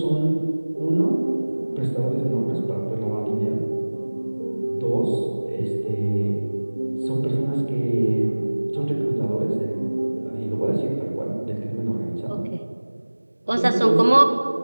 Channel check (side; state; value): both; inverted; correlation -1.00